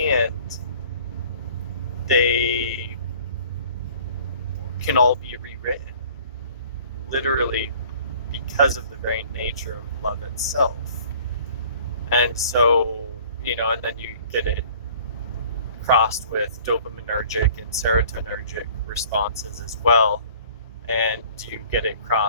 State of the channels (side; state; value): both; inverted; correlation -0.52